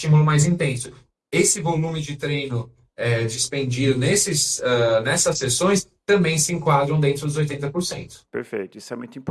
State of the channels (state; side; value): identical; both; correlation 1.00